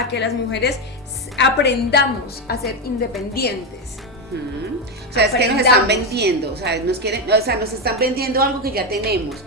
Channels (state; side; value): normal; both; correlation 0.10